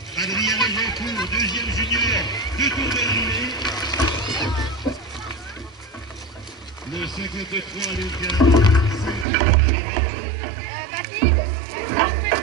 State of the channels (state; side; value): drops out; left; at 9.2 s